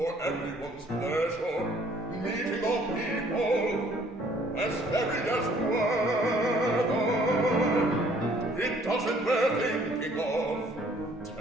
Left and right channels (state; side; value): normal; both; correlation 0.60